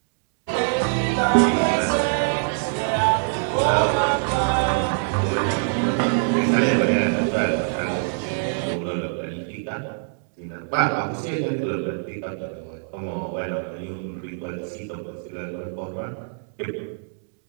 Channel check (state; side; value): silent; left; digital silence